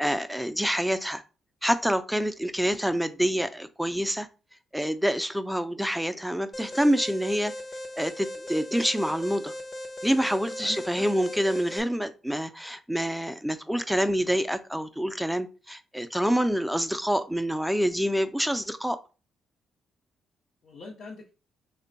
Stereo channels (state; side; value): normal; both; correlation 0.97